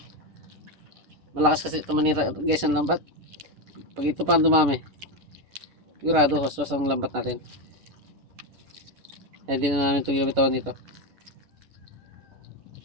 Malakas kasi ito manira guys ang lambat. Pag ito pa dumami, sigurado hoswas ang lambat natin. Hindi na namin ito ginabitawan dito.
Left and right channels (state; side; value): late; left; 11 ms